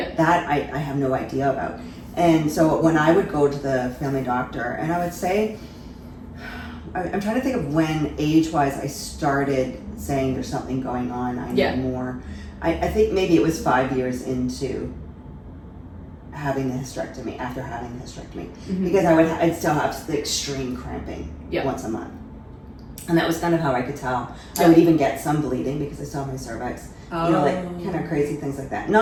That I have no idea about. And so when I would go to the family doctor, and I would say, I'm trying to think of when age-wise I started saying there's something going on, I need more. I think maybe it was 5 years into having the hysterectomy, after having the hysterectomy, because I'd still have the extreme cramping once a month. And that was kind of how I could tell. I would even get some bleeding because I saw my cervix. You know, like kind of crazy things like that.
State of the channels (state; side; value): identical; both; correlation 1.00